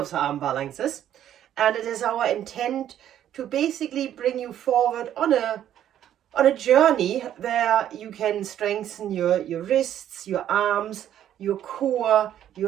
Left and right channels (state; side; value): quieter; left; 11.0 dB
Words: the arm balances, and it is our intent to basically bring you forward on a journey where you can strengthen your wrists, your arms, your core,